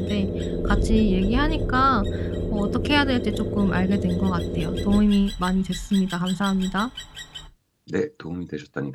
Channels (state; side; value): identical; both; correlation 1.00